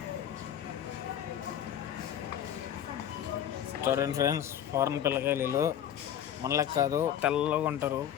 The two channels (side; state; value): right; quieter; 10.0 dB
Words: చూడండి ఫ్రెండ్స్, ఫారెన్ పిల్లకాయలు మనలకు కాదు, తెల్లగా ఉంటారు.